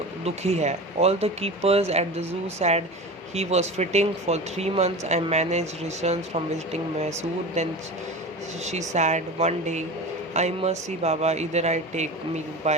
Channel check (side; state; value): both; normal; correlation 0.31